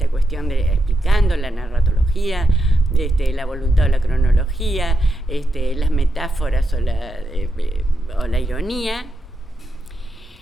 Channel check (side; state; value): both; normal; correlation 0.84